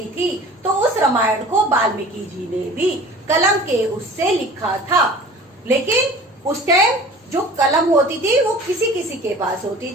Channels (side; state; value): both; normal; correlation 0.43